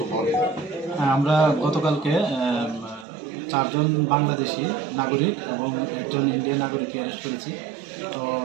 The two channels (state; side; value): drops out; left; at 3.1 s